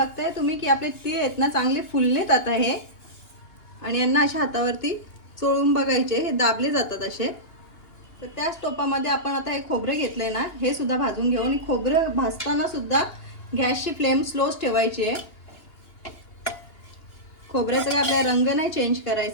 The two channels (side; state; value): right; late; 2.8 ms